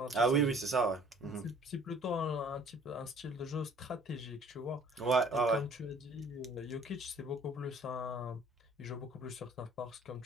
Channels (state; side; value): normal; both; correlation 0.53